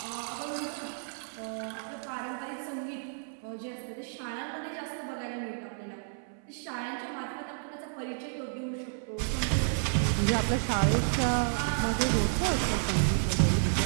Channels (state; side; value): silent; left; 57 dB below the other